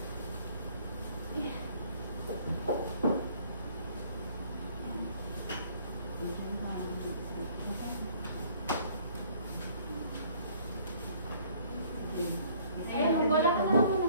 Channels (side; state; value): both; inverted; correlation -0.58